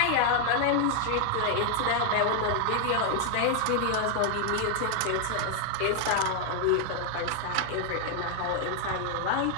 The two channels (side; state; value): both; different; correlation 0.00